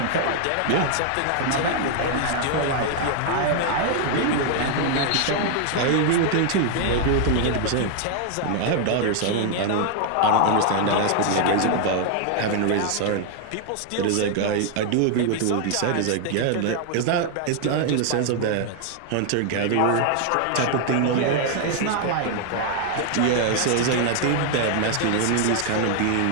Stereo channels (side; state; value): both; different; correlation 0.00